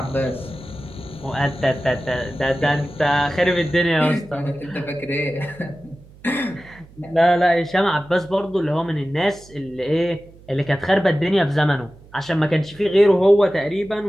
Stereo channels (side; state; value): right; noise; hum, 23 dB below the sound